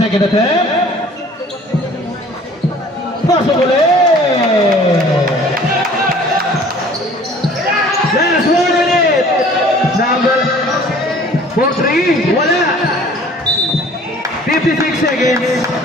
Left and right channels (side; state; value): both; normal; correlation 0.51